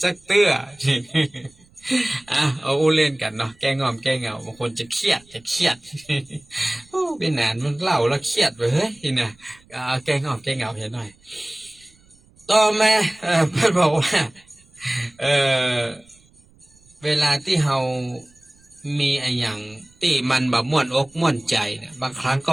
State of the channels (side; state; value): right; noise; rumble, 29 dB below the sound